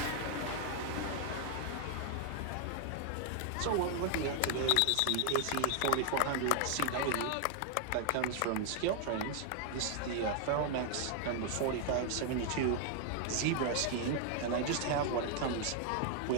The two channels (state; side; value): different; both; correlation 0.00